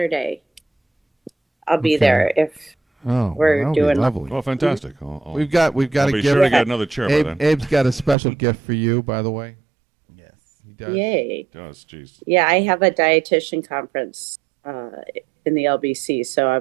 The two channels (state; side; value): drops out; left; at 8.2 s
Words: I'll be Okay. there if we're that would be doing- lovely. Well, fantastic. We've got I'll a be gift. sure to get another chair by then. Abe's got a special gift for you, by the way. Yeah. does. Yay. He does. Jeez. Yeah, I have a dietitian conference in the LBC, so